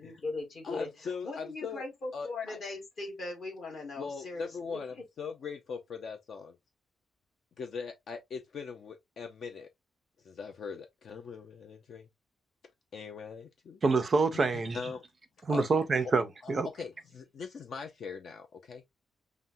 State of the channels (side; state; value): both; normal; correlation 0.82